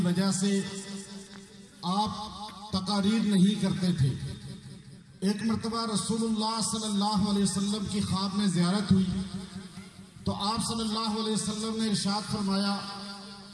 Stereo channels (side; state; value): both; identical; correlation 1.00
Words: وجہ سے آپ تقاریر نہیں کرتے تھے۔ ایک مرتبہ رسول اللہ صلی اللہ علیہ وسلم کی خواب میں زیارت ہوئی تو آپ صلی اللہ علیہ وسلم نے ارشاد فرمایا